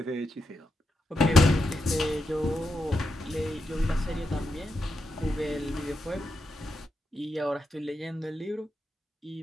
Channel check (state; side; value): normal; both; correlation 0.85